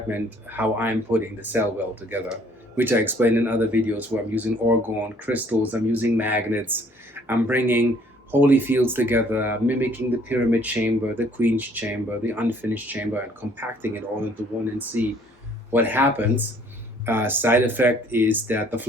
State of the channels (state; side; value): normal; both; correlation 0.60